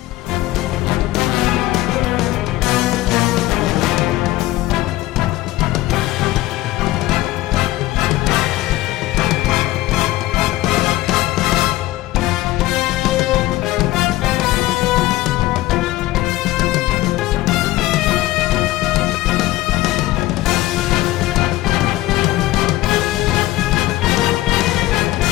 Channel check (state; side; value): quieter; right; 17.2 dB